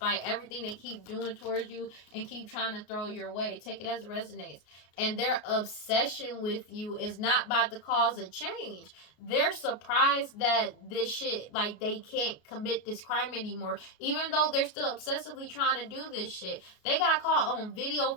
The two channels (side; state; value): right; late; 33 ms